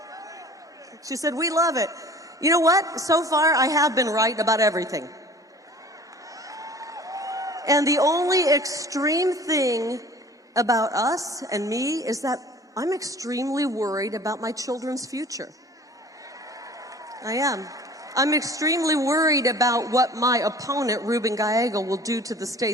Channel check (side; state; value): both; normal; correlation 0.46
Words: She said, "We love it." You know what? So far, I have been right about everything. And the only extreme thing about us and me is that I'm extremely worried about my children's future. I am. I'm extremely worried about what my opponent, Ruben Gallego, will do to the